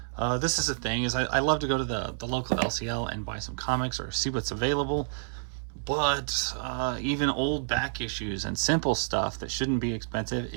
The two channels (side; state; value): left; silent; 58 dB below the other